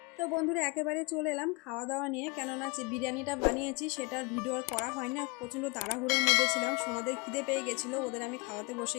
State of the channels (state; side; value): quieter; right; 27.5 dB